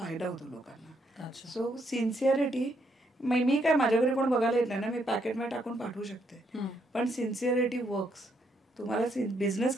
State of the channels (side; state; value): both; normal; correlation 0.74